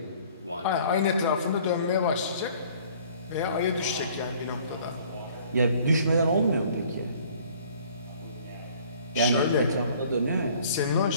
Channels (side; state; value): both; inverted; correlation -0.55